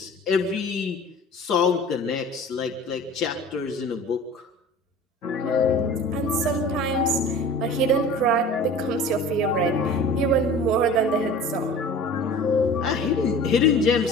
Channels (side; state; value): both; normal; correlation 0.41